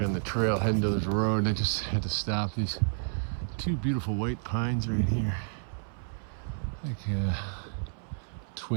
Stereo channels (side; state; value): left; silent; 58 dB below the other